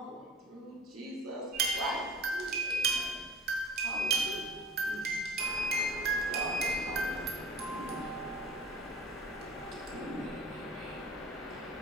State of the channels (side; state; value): both; normal; correlation 0.40